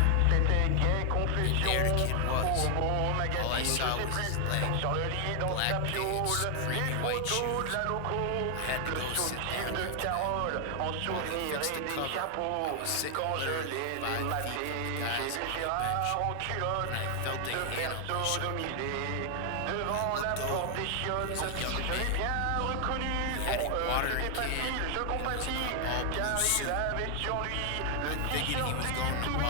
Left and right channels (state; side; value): different; both; correlation 0.00